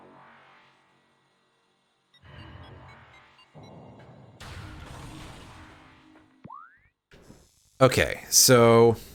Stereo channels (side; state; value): both; identical; correlation 1.00